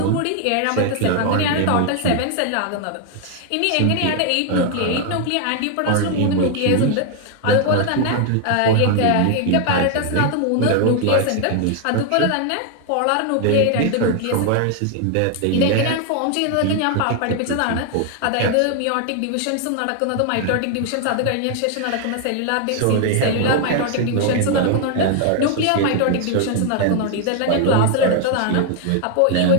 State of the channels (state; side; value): different; both; correlation 0.00